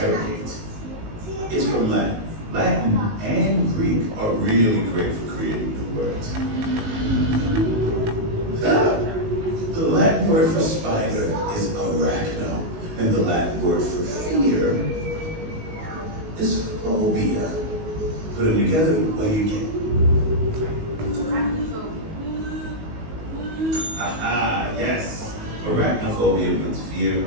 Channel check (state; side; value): late; left; 19 ms